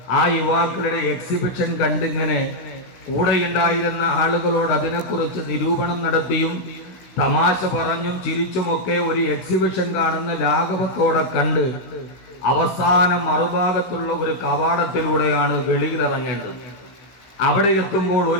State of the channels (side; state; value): right; late; 16 ms